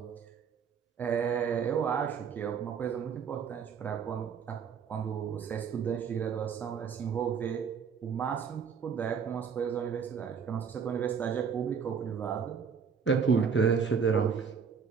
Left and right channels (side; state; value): left; quieter; 6.6 dB